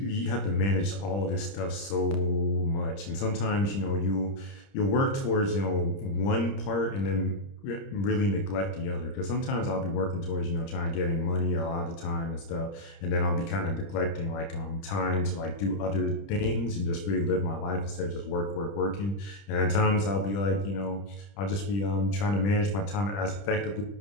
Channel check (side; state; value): right; late; 30 ms